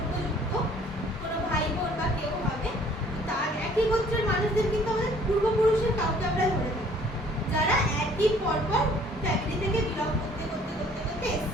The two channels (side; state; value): both; normal; correlation 0.57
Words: কোনো ভাই বোন বা কেউ হবে, তার একই গোত্রের মানুষদের কিন্তু আমাদের পূর্বপুরুষের কাউকে আমরা ধরে থাকি, যারা একই পরপর ফ্যামিলি থেকে বিলং করতে করতে করতে করতে